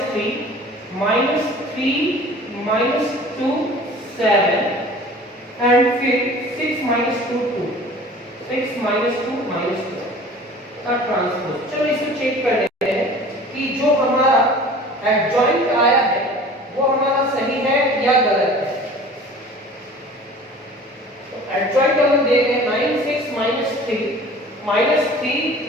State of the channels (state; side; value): normal; both; correlation 0.44